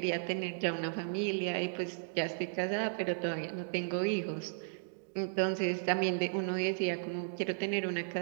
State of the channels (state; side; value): silent; left; digital silence